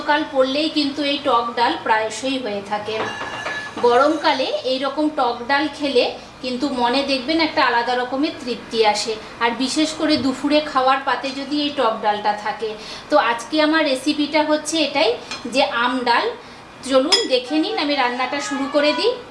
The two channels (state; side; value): identical; both; correlation 1.00